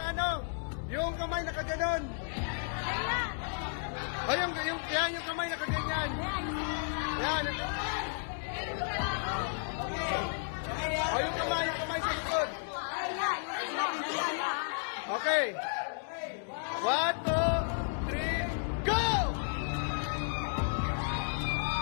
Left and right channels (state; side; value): silent; right; digital silence